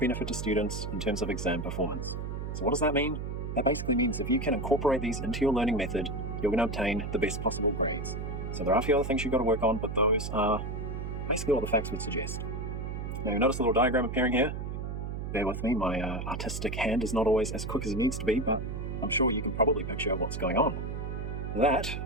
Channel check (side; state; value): right; noise; hum, 5 dB below the sound